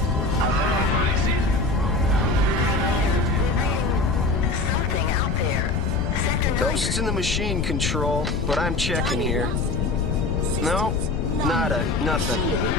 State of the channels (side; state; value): left; noise; rumble, 2 dB below the sound